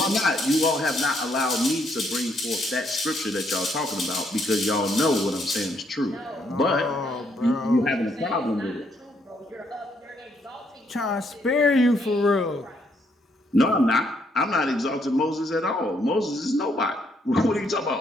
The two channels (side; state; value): both; normal; correlation 0.72